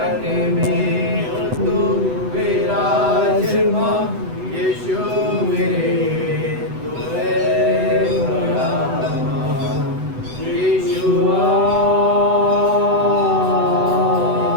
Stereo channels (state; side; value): late; left; 8.0 ms